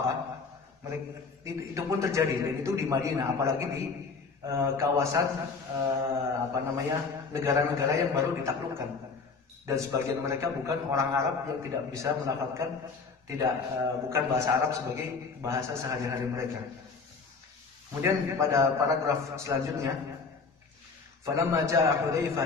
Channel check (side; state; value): right; quieter; 4.7 dB